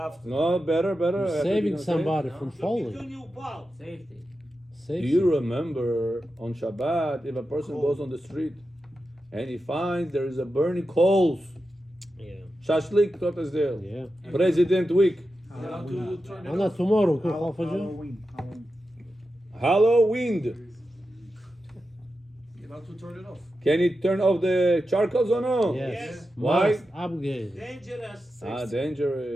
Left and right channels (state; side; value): normal; both; correlation 0.90